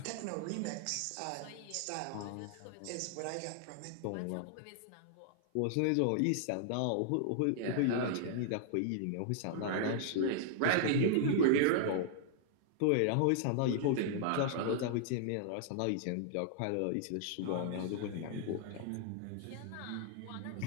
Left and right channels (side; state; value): both; different; correlation -0.01